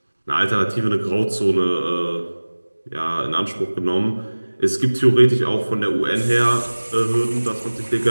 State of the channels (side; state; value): both; inverted; correlation -1.00